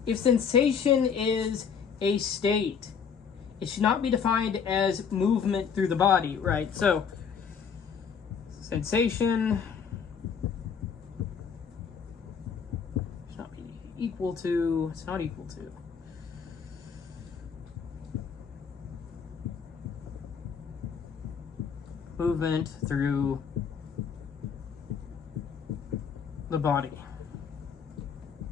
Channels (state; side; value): quieter; right; 6.7 dB